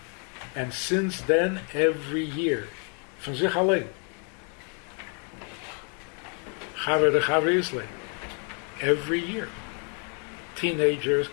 And since then, every year, von sich allein. Chaver de Chaver Isle. Every year. Teenagers,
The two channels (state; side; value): quieter; right; 39.4 dB